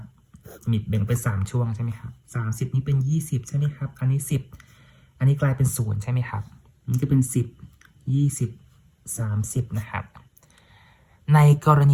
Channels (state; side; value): identical; both; correlation 1.00